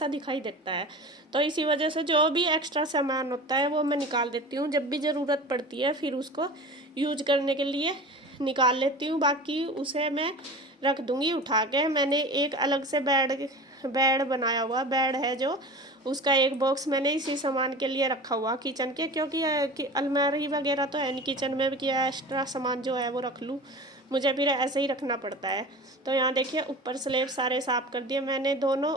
दिखाई देता है। तो इसी वजह से जो भी एक्स्ट्रा सामान होता है वो मैं निकाल देती हूँ। जब भी ज़रूरत पड़ती है फिर उसको यूज करने के लिए निकाल लेती हूँ, बाकी उसे मैं रख दूँगी उठा के। मैंने एक अलग से बेड बनाया हुआ बेड है, जो उसका एक बॉक्स मैंने इसी सामान के लिए रखा हुआ किचन के, क्योंकि अलमारी वगैरह तो है नहीं किचन में कि एक्स्ट्रा सामान जो है वो रख लूँ, मुझे फिर ऐसे ही रखना पड़ता है। तो यहाँ देखिए ऊपर स्लैब सारे साफ़ कर दिए मैंने दोनों,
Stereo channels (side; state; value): both; normal; correlation 0.35